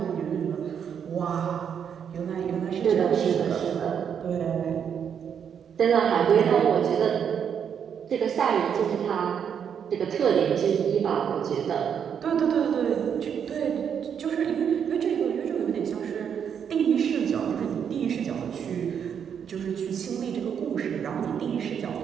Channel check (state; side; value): quieter; left; 7.8 dB